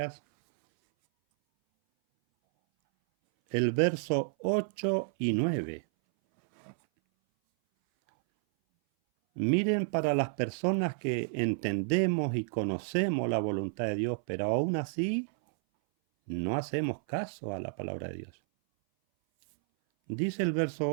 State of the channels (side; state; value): left; silent; 57 dB below the other